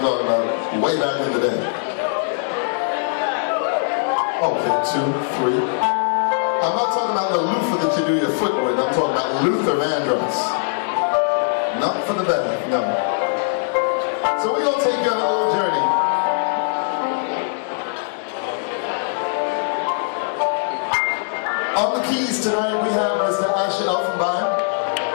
talking about way back in the day. Okay, 2, 3. I'm not talking about the loofah that you do your foot with. I'm talking about Luther Vandross. Not for the better, no. So we're going to take you on a little journey. On the keys tonight we have Mr. Shaha.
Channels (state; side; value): silent; right; digital silence